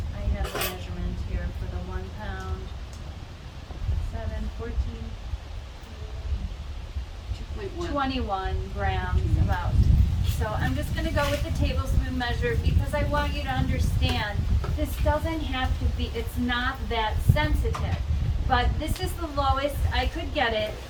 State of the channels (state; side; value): identical; both; correlation 1.00